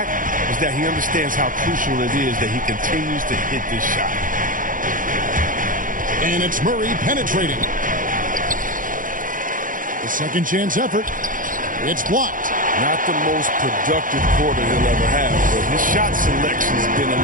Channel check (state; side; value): late; left; 0.39 ms